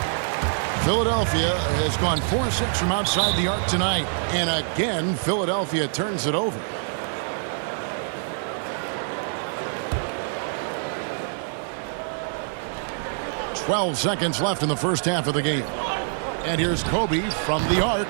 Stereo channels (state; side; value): silent; left; 62 dB below the other